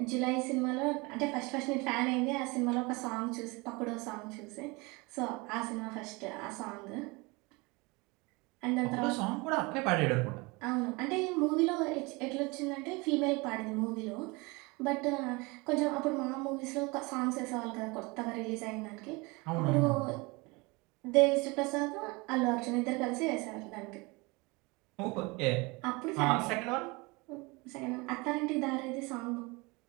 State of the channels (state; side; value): quieter; left; 25.9 dB